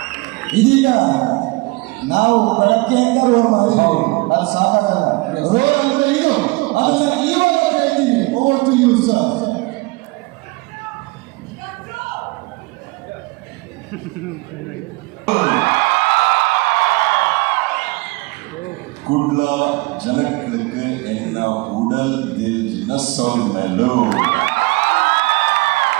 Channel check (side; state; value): left; quieter; 24.0 dB